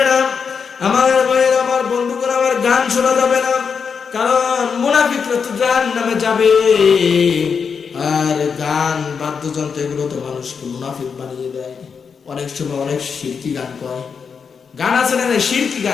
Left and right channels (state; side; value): quieter; right; 6.1 dB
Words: না। আমার ভাইয়ের, আমার বন্ধুগণ, আমার গান শোনা যাবে না, কারণ মুনাফিকরা তো জাহান্নামে যাবে। আর গান, বাদ্যযন্ত্র এগুলো তো মানুষকে মুনাফিক বানিয়ে দেয়। অনেক সময় অনেক শিরকি গান কয়। গান আছে না শিরকি